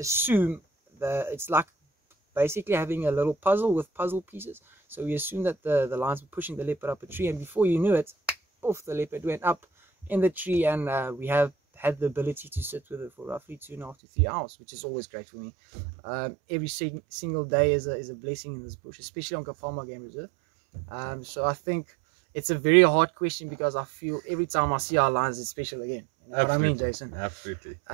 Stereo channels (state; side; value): drops out; left; at 14.0 s